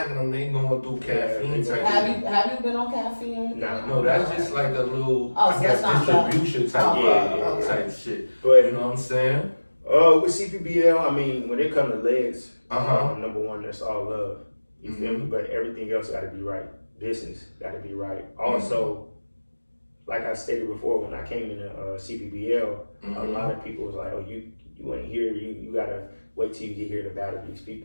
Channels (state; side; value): inverted; both; correlation -1.00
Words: them. They going through caffeine Yeah, type for. shit. Have you been on caffeine or anything? Nah. No, that's just like a little, Oh, so I guess, that's not distribution type, Yeah, type shit. But You know what I'm saying? with CPBL, I mean, when it comes to legs, Uh-huh. number one, that's all love. You feel me? But everything else got to be right. Business got to be right. Also, like I stated before, when I came into CPBL, a lot of people was like, "Oh, you ain't here. You gotta wait till you get here to battle these